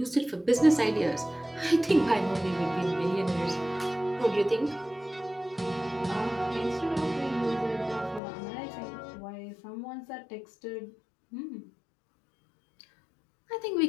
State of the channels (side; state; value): right; drops out; at 8.2 s